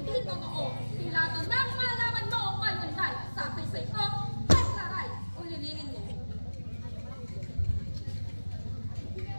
totoo. Pilato nang malaman mo ngayon ay sabi ko, ay saray, ulilinin mo.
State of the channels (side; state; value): both; inverted; correlation -1.00